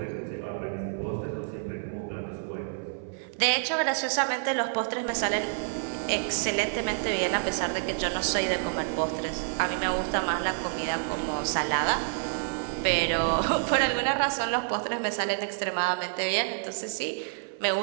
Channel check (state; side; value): silent; left; 59 dB below the other